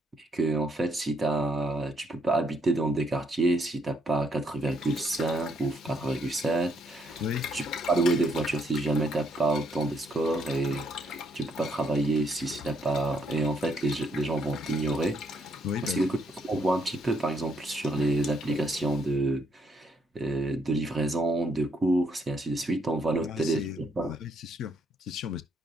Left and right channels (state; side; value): normal; both; correlation 0.72